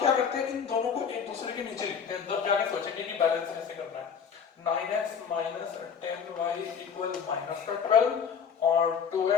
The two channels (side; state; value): right; quieter; 6.9 dB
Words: करते हैं, इन दोनों को एक दूसरे के नीचे लिखते हैं, तब जाके सोचेंगे कि बैलेंस कैसे करना है। 9x minus 10y equal minus का 12 और